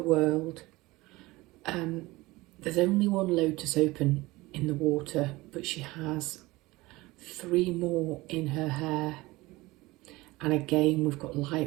There's only 1 lotus open in the water, but she has 3 more in her hair. And again, we've got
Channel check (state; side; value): quieter; left; 20.6 dB